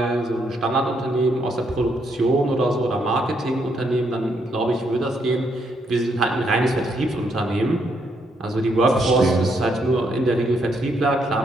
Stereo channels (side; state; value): both; normal; correlation 0.75